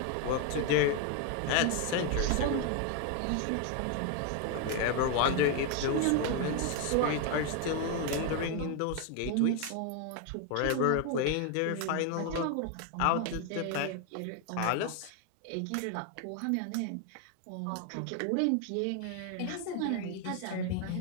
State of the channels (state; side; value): different; both; correlation 0.01